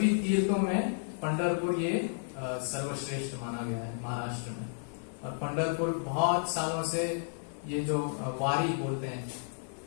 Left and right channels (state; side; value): silent; right; digital silence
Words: तीर्थों में पंढरपुर ये सर्वश्रेष्ठ माना गया है महाराष्ट्र में। और पंढरपुर बहुत सालों से ये जो वारी बोलते हैं,